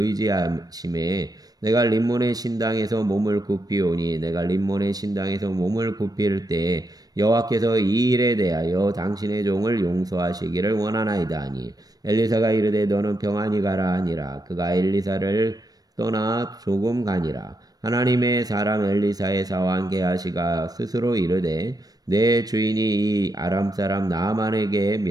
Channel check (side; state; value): left; late; 0.19 ms